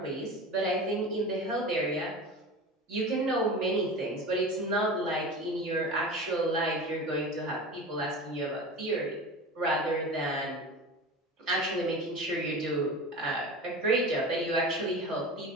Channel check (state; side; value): normal; both; correlation 0.32